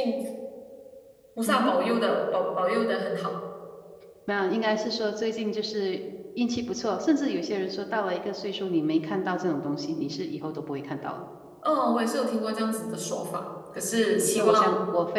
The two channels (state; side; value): identical; both; correlation 1.00